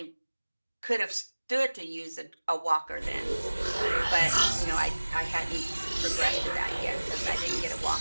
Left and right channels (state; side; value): inverted; both; correlation -1.00